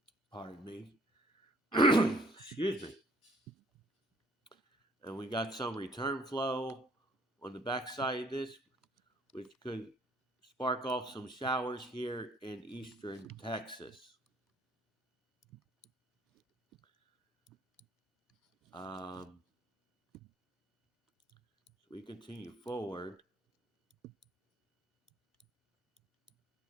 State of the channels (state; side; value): normal; both; correlation 0.59